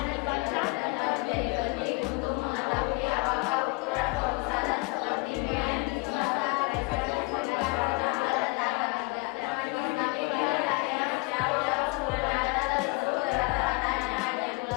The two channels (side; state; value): right; quieter; 28.1 dB